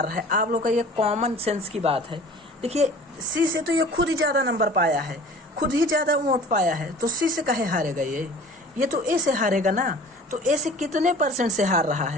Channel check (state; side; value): normal; both; correlation 0.45